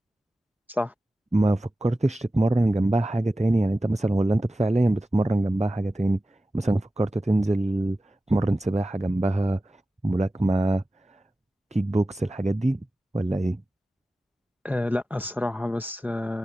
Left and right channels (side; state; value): both; normal; correlation 0.94